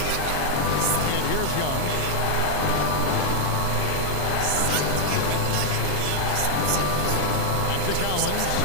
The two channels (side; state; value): both; different; correlation 0.00